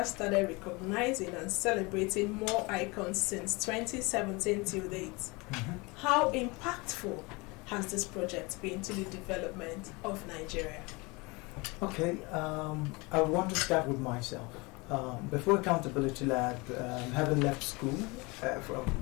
started recognizing and celebrating more icons since 2017 till date. Mm-hmm. How impactful has this project been to the development of Nigeria? Okay, I want to start with myself. Before Accountability Lab, having left school from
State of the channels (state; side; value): quieter; right; 26.1 dB